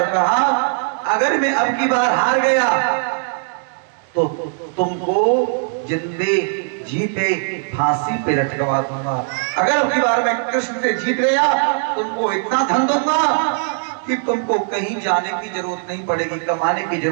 कहा, अगर मैं अब की बार हार गया तो तुमको जिंदे जी पे फांसी पे लटकवा दूंगा। अगर अब की बार मैं कृष्ण से जीत गया, तुमको इतना धन दूंगा कि तुमको कहीं जाने की जरूरत नहीं पड़ेगी, कमाने की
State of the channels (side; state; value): left; silent; digital silence